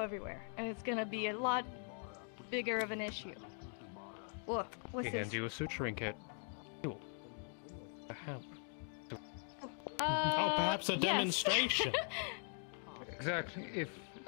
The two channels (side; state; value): right; silent; 50 dB below the other